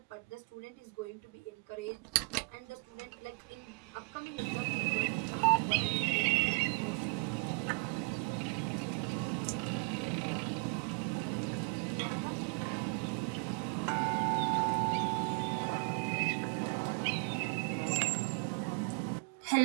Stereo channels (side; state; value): left; quieter; 34.8 dB